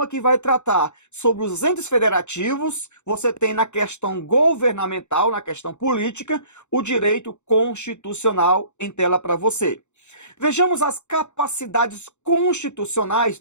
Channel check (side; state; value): right; late; 0.83 ms